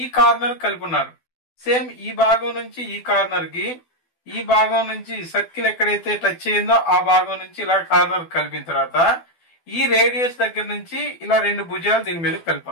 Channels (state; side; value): late; right; 12 ms